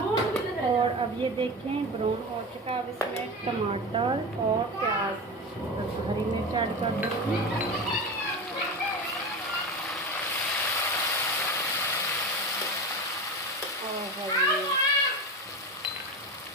और अब ये देखें, ब्राउन हो चुका है। अब इसमें टमाटर और प्याज, हरी मिर्च ऐड कर दूँगी।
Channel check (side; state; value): both; normal; correlation 0.25